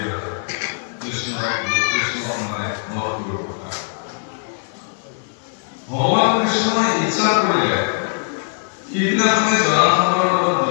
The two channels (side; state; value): right; silent; digital silence